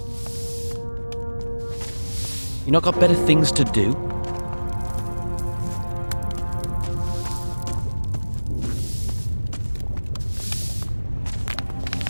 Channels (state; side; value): inverted; both; correlation -1.00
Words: You not got better things to do?